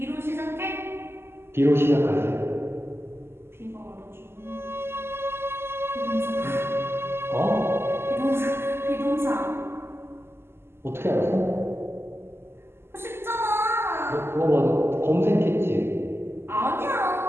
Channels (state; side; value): late; left; 0.12 ms